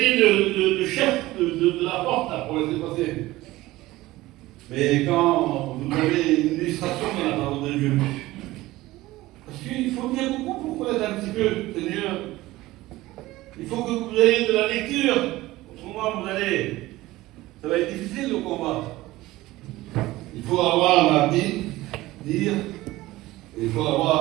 le chef de la porte là, pour laisser passer. Mais quand vous avez une illustration dans la parole de Dieu, parce qu'il faut bien beaucoup pour connaître un petit peu, Seigneur. Il faut que vous ayez de la lecture. Autrement, ça va être difficile le combat. Il faut avoir la Bible, lire, et il faut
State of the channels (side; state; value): left; quieter; 17.9 dB